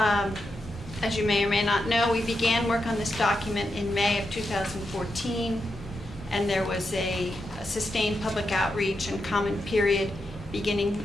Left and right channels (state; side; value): normal; both; correlation 0.86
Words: you may or may not know, we began work on this document in May of 2014, and there was a sustained public outreach and comment period